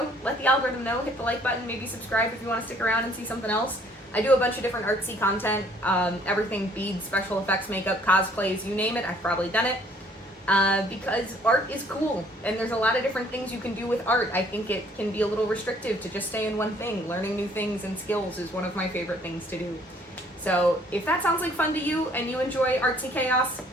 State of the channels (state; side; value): normal; both; correlation 0.60